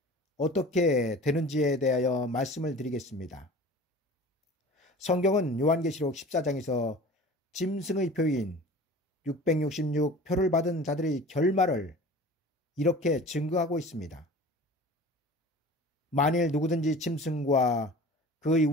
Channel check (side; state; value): both; normal; correlation 0.40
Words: 어떻게 되는지에 대하여 말씀을 드리겠습니다. 성경은 요한계시록 14장에서 짐승의 표인 666 표를 받은 자들의 결말을 이렇게 증거하고 있습니다. 만일 누구든지 짐승과 그의